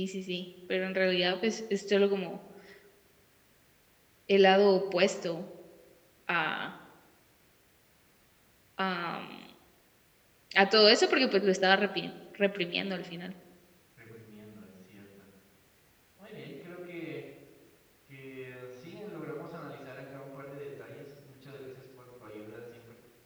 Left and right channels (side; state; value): both; identical; correlation 1.00